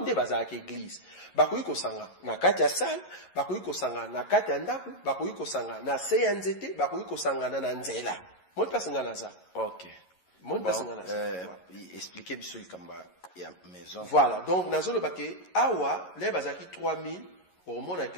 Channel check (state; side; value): late; right; 11 ms